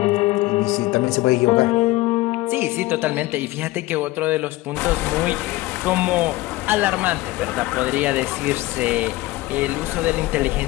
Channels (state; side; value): quieter; right; 18.9 dB